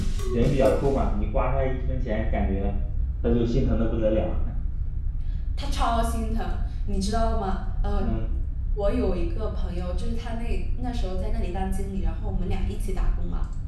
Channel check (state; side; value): identical; both; correlation 1.00